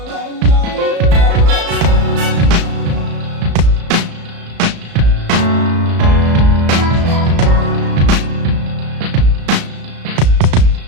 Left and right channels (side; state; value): left; late; 35 ms